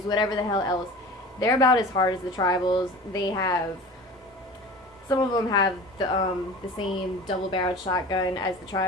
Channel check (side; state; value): both; normal; correlation 0.38